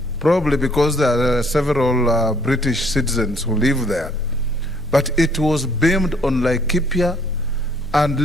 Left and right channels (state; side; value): noise; left; rumble, 24 dB below the sound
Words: probably because there are several British citizens who live there. But it was beamed on Laikipia, and